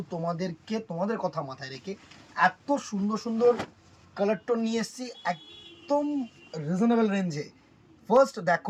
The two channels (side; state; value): both; identical; correlation 1.00